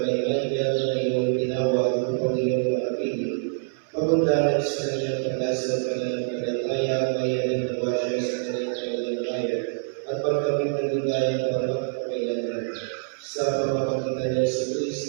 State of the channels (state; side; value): silent; left; 61 dB below the other